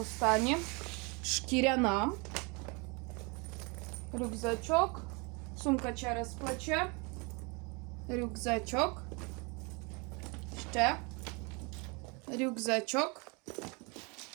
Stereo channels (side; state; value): left; quieter; 30.3 dB